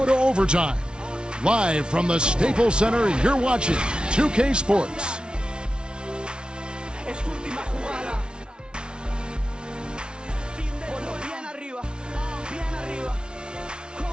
to overtime. Live from the Staples Center, you're watching 2K Sports.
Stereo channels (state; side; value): late; left; 0.056 ms